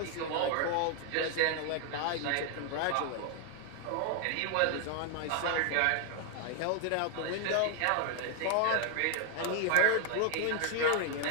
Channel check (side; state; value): both; different; correlation 0.01